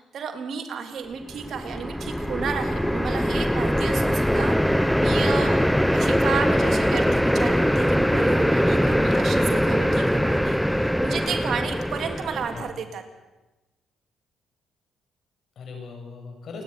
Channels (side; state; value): both; normal; correlation 0.96